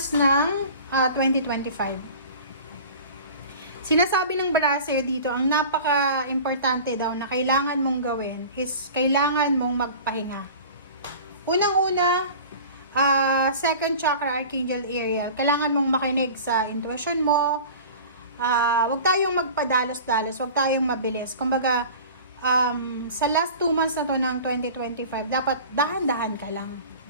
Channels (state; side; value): inverted; both; correlation -0.39